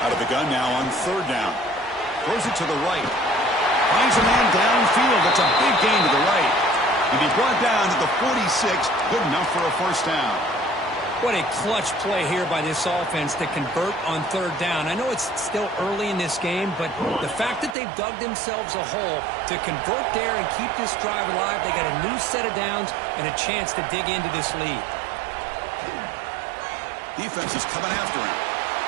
Out of the gun now on third down. Throws it to the right. Finds a man downfield. That's a big gain to the right. And he brought down to the 46. Good enough for a first down. What a clutch play here by this offense to convert on third down. I know it's still early in this game, but the fact that they've dug themselves a hole to convert there and keep this drive alive, they got a new set of downs and a chance to dig into this lead. Defense is coming after him.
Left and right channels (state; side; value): drops out; left; at 17.8 s